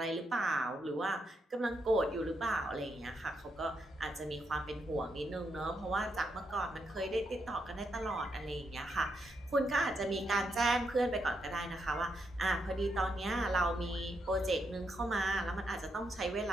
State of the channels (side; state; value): both; normal; correlation 0.80